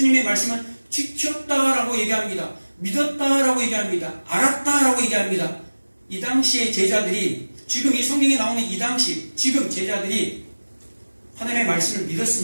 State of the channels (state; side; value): inverted; both; correlation -1.00